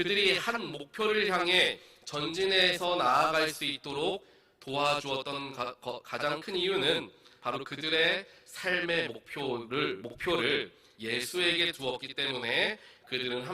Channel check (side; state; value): both; identical; correlation 1.00